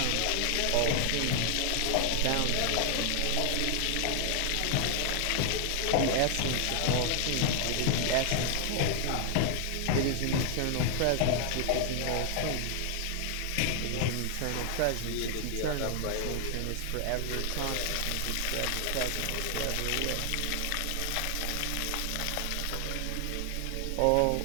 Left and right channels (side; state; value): both; different; correlation 0.00